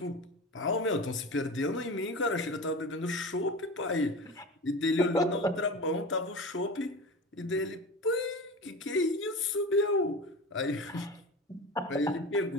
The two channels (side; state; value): both; normal; correlation 0.31